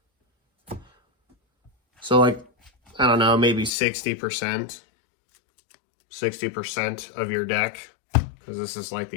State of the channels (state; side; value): drops out; right; at 3.7 s